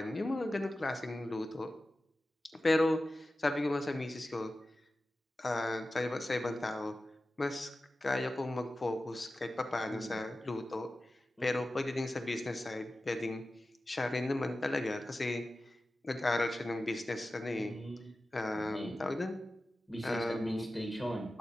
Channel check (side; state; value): both; normal; correlation 0.94